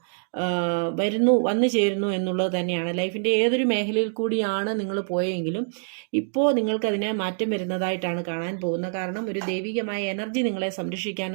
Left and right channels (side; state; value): left; silent; digital silence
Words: വന്നു ചേരുന്നു എന്നുള്ളത് തന്നെയാണ്. ലൈഫിൻ്റെ ഏതൊരു മേഖലയിൽ കൂടിയാണ് നിങ്ങൾ പോയെങ്കിലും ഇപ്പോൾ നിങ്ങൾക്കതിനെ മാറ്റം വരുന്നതായിട്ടാണ് കാണാൻ പോകുന്നത്. കാരണം ഒരു ദൈവികമായ എനർജി നിങ്ങളെ